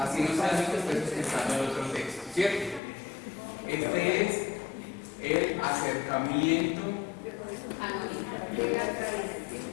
no sea el mismo, esté sustentando el otro texto. ¿Cierto? Este es el acercamiento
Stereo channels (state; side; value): drops out; right; at 2.8 s